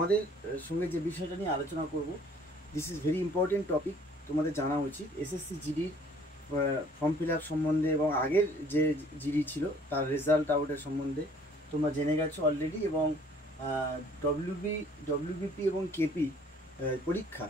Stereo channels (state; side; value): normal; both; correlation 0.57